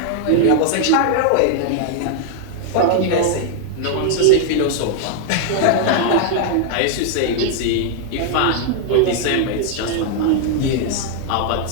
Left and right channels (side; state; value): both; different; correlation -0.01